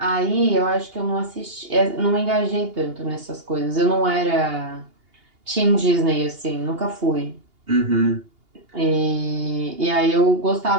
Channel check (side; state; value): left; late; 2.8 ms